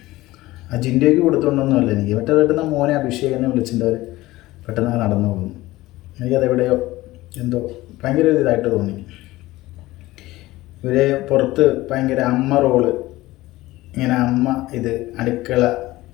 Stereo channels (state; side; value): quieter; right; 18.1 dB